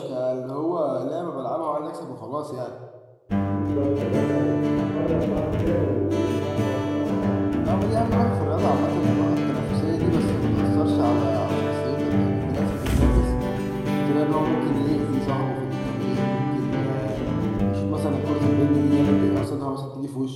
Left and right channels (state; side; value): identical; both; correlation 1.00